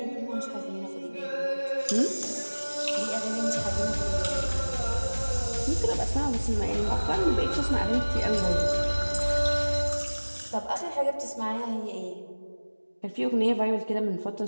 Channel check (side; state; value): both; inverted; correlation -1.00